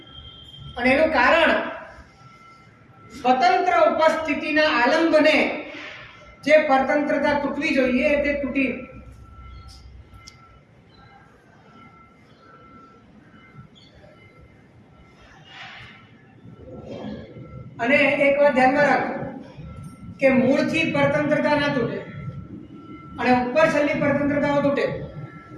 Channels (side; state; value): both; identical; correlation 1.00